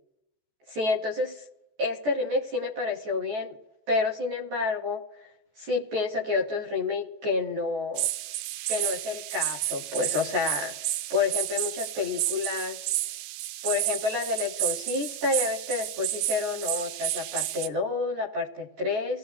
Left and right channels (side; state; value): left; late; 15 ms